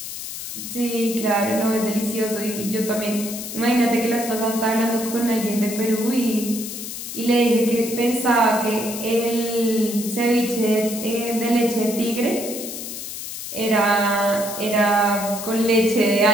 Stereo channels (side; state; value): left; noise; hiss, 8 dB below the sound